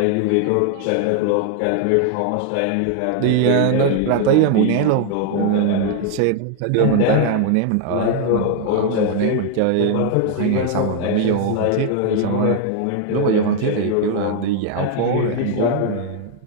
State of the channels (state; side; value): different; both; correlation 0.00